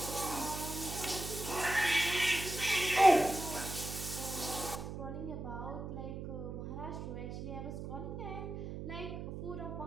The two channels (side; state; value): right; noise; hum, 7 dB below the sound